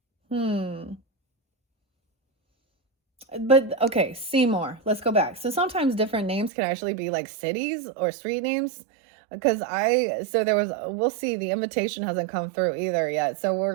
okay, Seymour. Let's go back. So sometimes different names can actually be like cities or street names. Because we'll see, the invitation hasn't come through either yet. So we're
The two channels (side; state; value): left; drops out; at 6.5 s